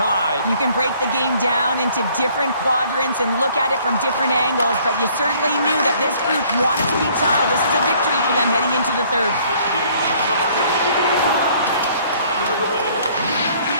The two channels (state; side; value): inverted; both; correlation -0.59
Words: You can break the game down into different quadrants and look at it from different angles, but you certainly knew that this group wanted to be tied. This is a victory for them heading into the third.